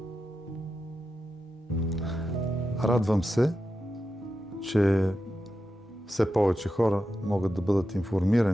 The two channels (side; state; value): both; normal; correlation 0.89